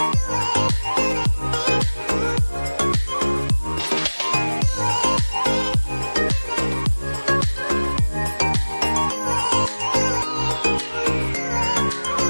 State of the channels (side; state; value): both; inverted; correlation -1.00